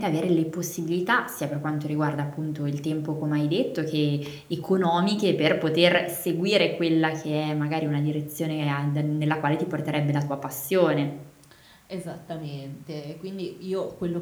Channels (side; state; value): both; identical; correlation 1.00